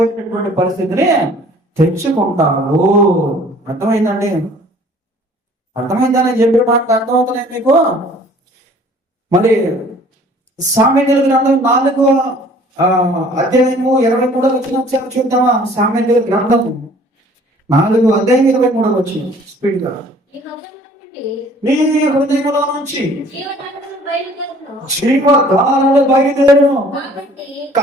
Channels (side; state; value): both; normal; correlation 0.53